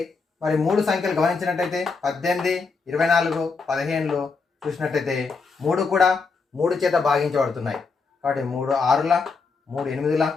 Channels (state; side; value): quieter; right; 4.6 dB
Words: మరి మూడు సంఖ్యలు గమనించినట్టయితే 18, 24, 15 చూసినట్టయితే మూడు కూడా 3 చేత భాగించబడుతున్నాయి. కాబట్టి 3 6ల, 3 8ల,